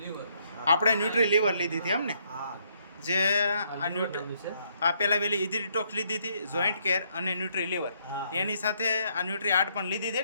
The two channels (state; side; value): inverted; both; correlation -0.71